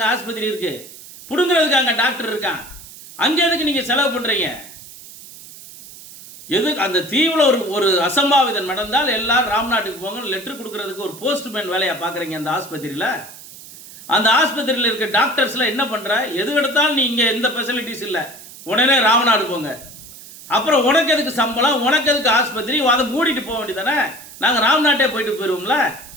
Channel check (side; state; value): right; noise; hiss, 17 dB below the sound